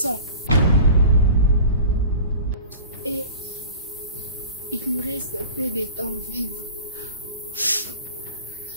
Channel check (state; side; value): inverted; both; correlation -0.39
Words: Et il lui reste un peu de temps vivre. Je